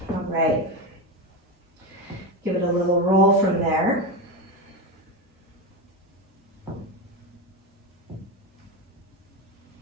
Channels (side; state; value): both; normal; correlation 0.16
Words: All right. Give it a little roll from there.